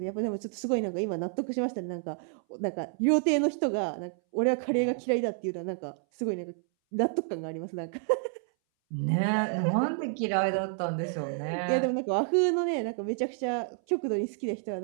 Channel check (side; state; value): left; silent; 58 dB below the other